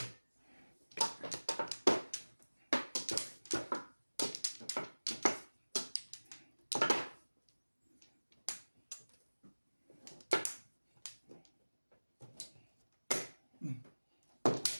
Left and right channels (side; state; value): both; inverted; correlation -1.00